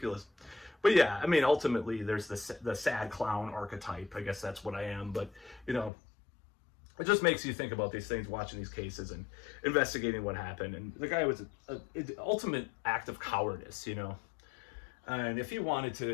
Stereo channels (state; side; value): drops out; right; at 5.9 s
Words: But yeah, I mean, ultimately, there's the sad clown archetype. I guess that's what I am. But, you know, it just makes you think about these things, watching these cases and investigating what happened. And the guy was an ultimate act of cowardice, you know. And if he wanted